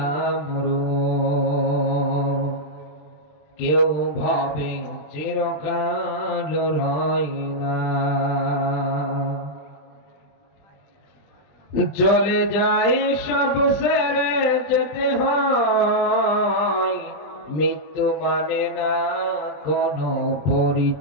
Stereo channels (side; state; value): right; late; 20 ms